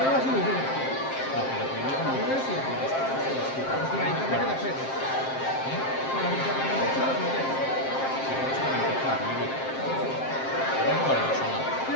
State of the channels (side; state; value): right; late; 7.6 ms